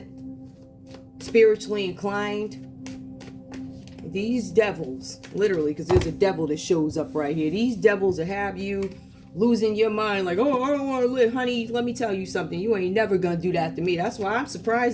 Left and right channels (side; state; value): both; identical; correlation 1.00